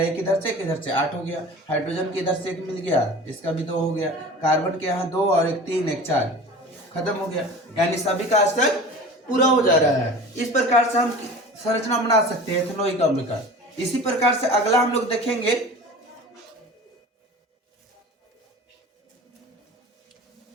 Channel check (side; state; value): both; normal; correlation 0.38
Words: एक इधर से एक इधर से, 8 हो गया। हाइड्रोजन के इधर से 1 मिल गया, इसका भी 2 हो गया। कार्बन के यहाँ 2 और 1 3, 1 4, खत्म हो गया। यानी सभी का स्तर पूरा हो जा रहा है। इस प्रकार से हम संरचना बना सकते हैं एथेनोइक अम्ल का। इसी प्रकार से अगला हम लोग देखेंगे